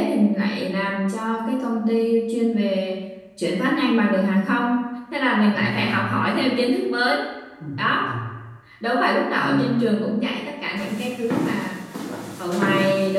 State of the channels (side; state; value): both; identical; correlation 1.00